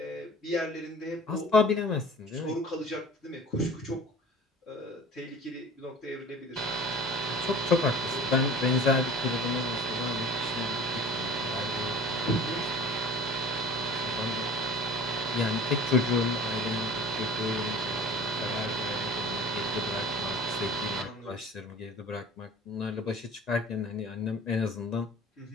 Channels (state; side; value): normal; both; correlation 0.41